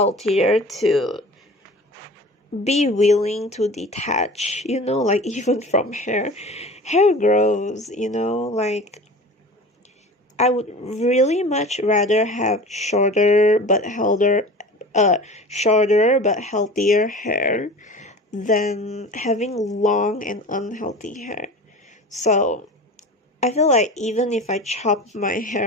to be willing to detach, like even from hair. Hair grows, like I would really much rather have shorter but healthier hair than having long and unhealthy hair. So I feel like even if I chop my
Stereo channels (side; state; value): both; normal; correlation 0.37